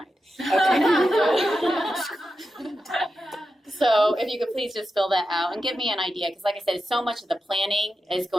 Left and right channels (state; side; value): normal; both; correlation 0.90